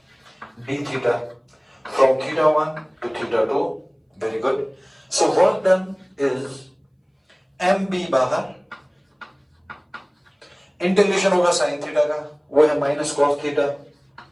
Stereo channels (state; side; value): identical; both; correlation 1.00